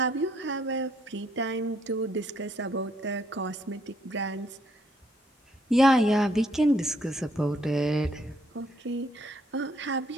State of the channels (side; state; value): both; normal; correlation 0.69